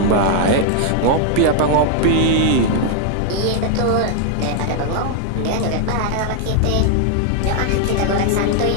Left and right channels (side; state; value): both; different; correlation 0.00